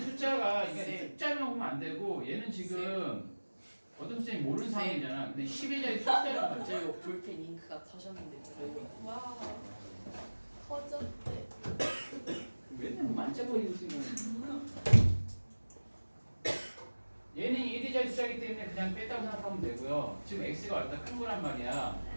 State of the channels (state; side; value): inverted; both; correlation -1.00